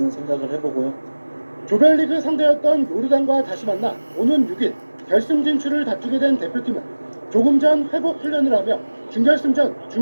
생각을 해보고요. 조별리그 상대였던 요르단과 다시 만나 오는 6일 결승 진출을 다투게 된 대표팀은 조금 전 회복 훈련을 하며 준결승전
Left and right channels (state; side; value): inverted; both; correlation -1.00